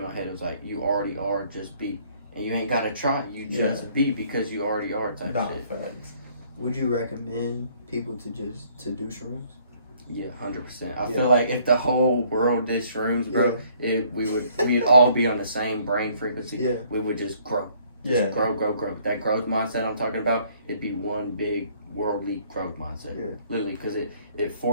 my head. It was like you already are, just be. And you ain't gotta try. You just be, because you already are type shit. Facts. Would you recommend people to do shrooms? Yeah, 100%. I feel like if the whole world did shrooms, bro, we'd all be on the same brain frequency. Yeah. We would just grow. Just grow. That growth mindset I'm talking about, it'd be one big worldly growth mindset. Yeah. Literally, because it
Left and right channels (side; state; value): both; inverted; correlation -0.62